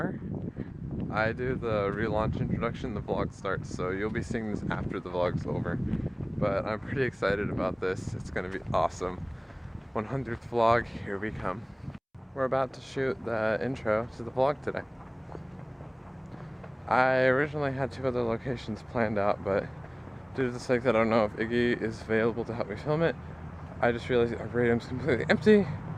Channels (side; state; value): both; identical; correlation 1.00